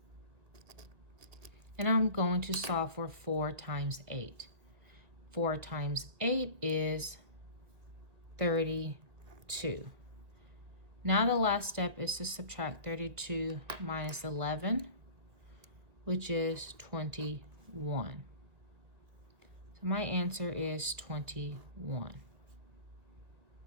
and I'm going to solve for 4 times 8. 4 times 8 is 32. Now the last step is to subtract 32 minus 11, which is 21. So my answer is 21.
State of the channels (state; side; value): late; left; 1.6 ms